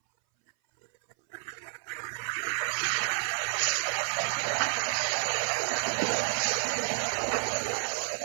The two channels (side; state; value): left; silent; 58 dB below the other